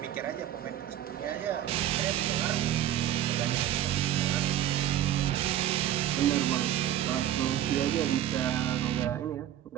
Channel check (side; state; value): left; quieter; 11.8 dB